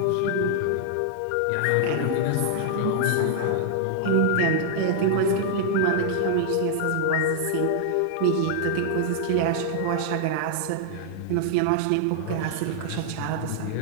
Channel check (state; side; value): different; both; correlation -0.01